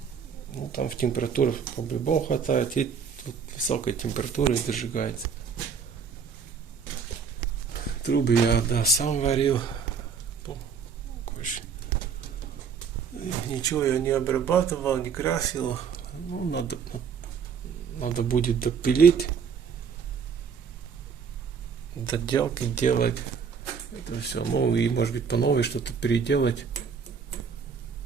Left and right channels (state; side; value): quieter; left; 6.3 dB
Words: Ну, там в температуре по-любому хватает, и тут высокой температуры дожигается. Трубы я, да, сам варил. Ничего я не обрабатывал, не красил. Ну, надо будет допилить, доделки делать. Это все. Ну, и может быть по новой что-то переделать.